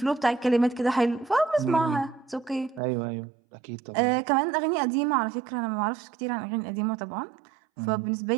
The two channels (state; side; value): drops out; left; at 2.8 s